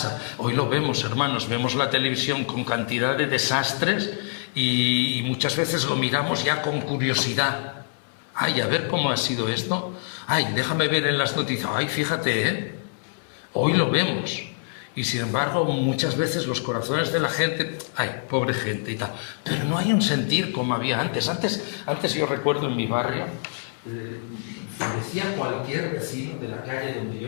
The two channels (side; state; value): right; silent; 62 dB below the other